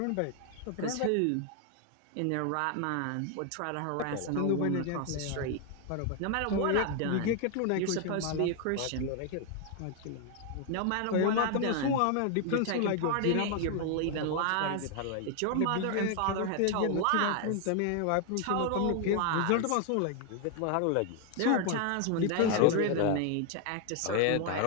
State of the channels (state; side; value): different; both; correlation 0.00